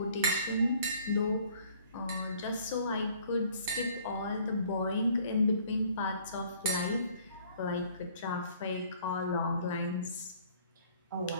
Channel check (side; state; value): both; inverted; correlation -0.57